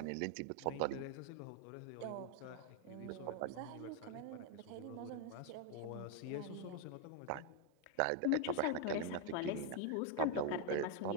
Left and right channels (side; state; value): both; different; correlation 0.01